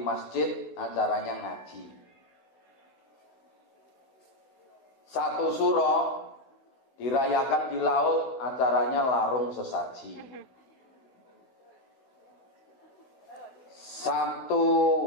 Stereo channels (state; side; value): late; right; 16 ms